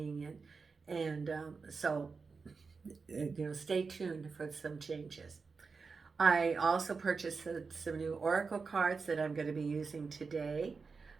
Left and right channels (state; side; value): quieter; left; 4.8 dB